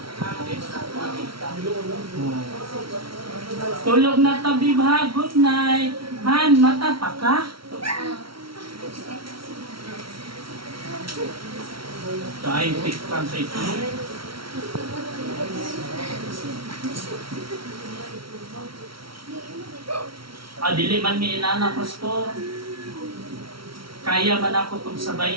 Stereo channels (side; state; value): left; late; 0.74 ms